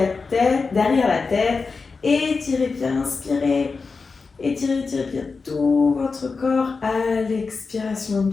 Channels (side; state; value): right; quieter; 4.5 dB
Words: tête, derrière la tête. Étirez bien, inspirez. Étirez bien tout votre corps à l'expiration.